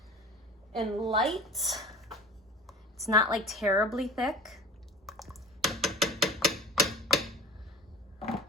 and light. It's not like terribly thick.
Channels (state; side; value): normal; both; correlation 0.37